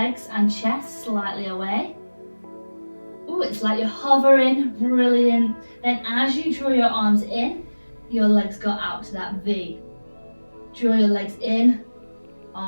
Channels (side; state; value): both; inverted; correlation -1.00